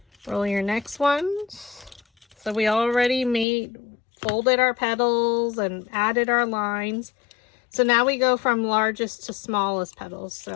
Roll your next one. So we already folded our petals and added our lines. So now we go from largest to smallest petals.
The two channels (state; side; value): drops out; right; at 3.5 s